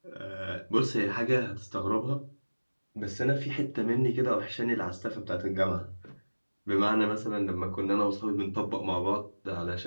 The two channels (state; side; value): inverted; both; correlation -1.00